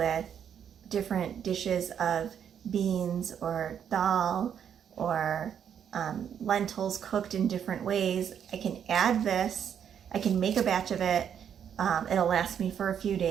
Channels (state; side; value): quieter; left; 8.5 dB